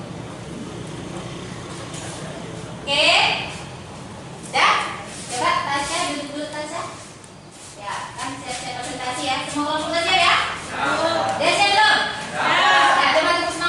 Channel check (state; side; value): identical; both; correlation 1.00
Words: Oke. Dah? Coba Tasya duduk dulu Tasya. Ya, kan siap-siap presentasi ya. Semua kelompok udah siap ya? Udah siap belum? Ya, coba tepuk